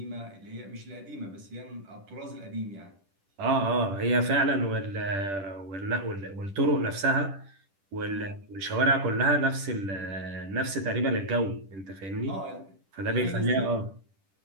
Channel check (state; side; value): late; left; 10 ms